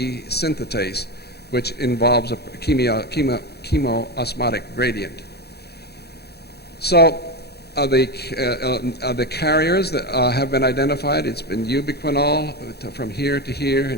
synthetase, which involves a chemoosmotic gradient. So the carriers that have been identified, it's been ubiquinol from here to here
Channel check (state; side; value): late; right; 0.47 ms